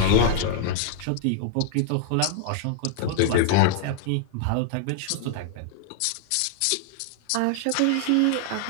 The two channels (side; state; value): both; different; correlation -0.01